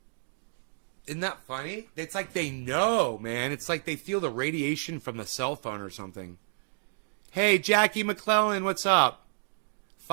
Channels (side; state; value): left; silent; digital silence